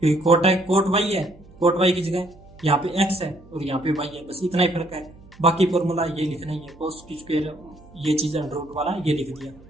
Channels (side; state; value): right; noise; hum, 24 dB below the sound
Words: क्योंकि कोट y है, कोट y की जगह यहाँ पे x है और यहाँ पे y है, बस इतना ही फर्क है। बाकी फॉर्मूला ये लिखना ही है, कोस की स्क्वायर ये चीज़ √ वाला ये लिख दिया।